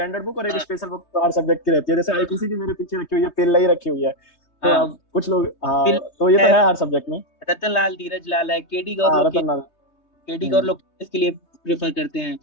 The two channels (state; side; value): late; right; 3.2 ms